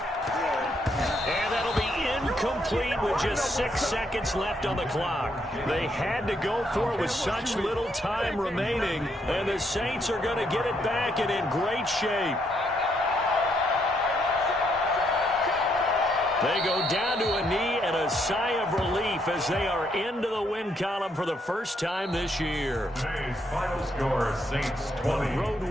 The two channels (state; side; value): normal; both; correlation 0.74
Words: And that'll be incomplete with just 6 seconds left on the clock. They had to go for it with such little time remaining, and the Saints are going to get it back and in great shape. They go down to a knee and a sigh of relief as they are into the win column for the first time this year. Today's final score, Saints 20. Road